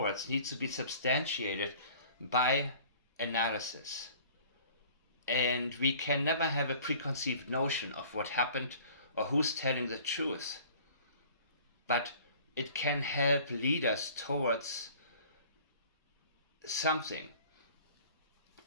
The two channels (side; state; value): both; inverted; correlation -0.49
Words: needs to be substantiated by analysis. And we can never have a preconceived notion of what happened or who's telling the truth. But it can help lead us towards something.